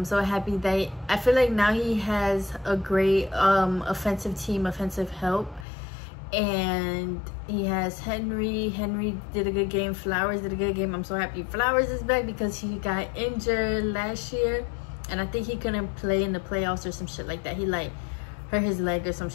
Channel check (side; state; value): right; drops out; at 5.7 s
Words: so happy that I feel like now he has a great offensive team, offensive help. And he has Henry did a good game. Flowers did a good game. I'm so happy Flowers is back because he got injured last year, and I think he couldn't play in the playoffs or some shit like that. He like hurt his leg or some